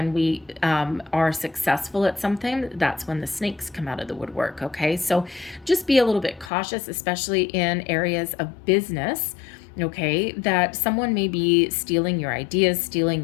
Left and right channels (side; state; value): right; drops out; at 6.5 s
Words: we are successful at something, that's when the snakes come out of the woodwork, okay? So just be a little bit cautious, especially in areas of business, okay, that someone may be stealing your ideas,